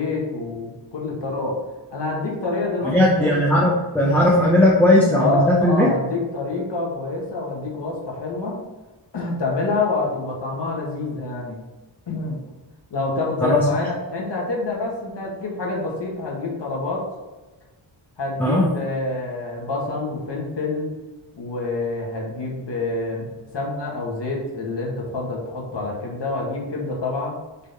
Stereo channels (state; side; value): normal; both; correlation 0.29